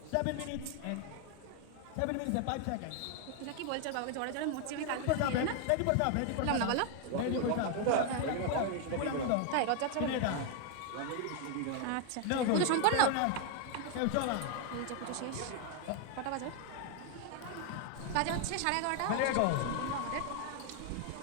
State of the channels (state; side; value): different; both; correlation 0.01